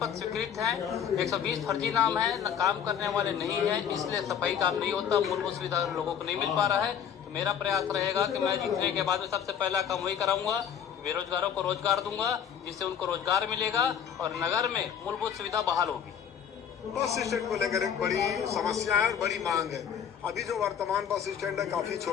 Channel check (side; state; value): right; quieter; 8.4 dB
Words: स्वीकृत हैं, 120 फर्जी नाम है, काम करने वाले नहीं है, इसलिए सफाई काम नहीं होता, मूलभूत सुविधा लोगों को नहीं मिल पा रहा है। तो मेरा प्रयास रहेगा कि मैं जीतने के बाद में सबसे पहला काम वही कराऊंगा, बेरोजगारों को रोजगार दूंगा, जिससे उनको रोजगार मिलेगा और नगर में मूलभूत सुविधा बहाल होगी। बस स्टैंड को लेकर एक बड़ी समस्या है और बड़ी मांग है। अभी जो वर्तमान बस स्टैंड है काफी